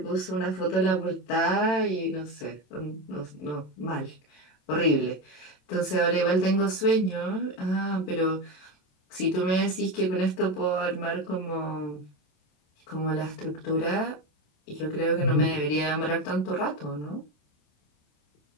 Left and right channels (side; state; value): right; late; 27 ms